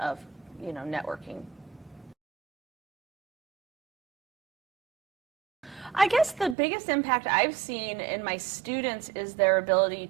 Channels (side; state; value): left; drops out; at 6.6 s